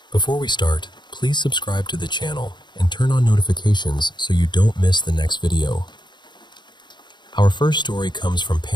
Before we start, please subscribe to the channel and turn on notifications so you don't miss the next video. Our first story comes from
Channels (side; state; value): right; late; 0.22 ms